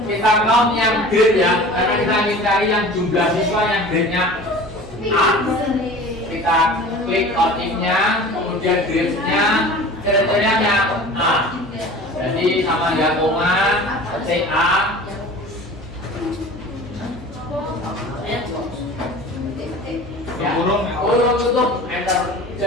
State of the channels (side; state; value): right; noise; hum, 19 dB below the sound